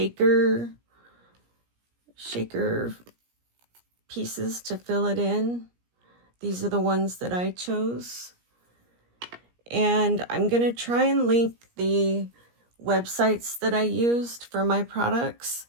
pieces to fill it in. These are the ones that I chose. And I'm going to try and link the websites that I used for my products.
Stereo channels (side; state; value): left; late; 17 ms